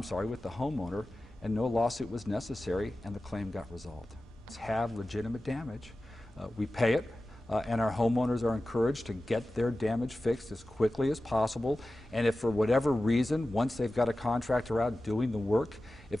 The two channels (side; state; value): both; normal; correlation 0.95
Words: the homeowner, and no lawsuit was necessary, and the claim got resolved. Have legitimate damage. We pay it, and our homeowners are encouraged to get their damage fixed as quickly as possible. And if for whatever reason, once they've got a contractor out doing the work, if